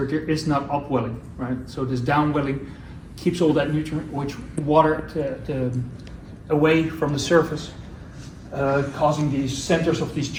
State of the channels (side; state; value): both; identical; correlation 1.00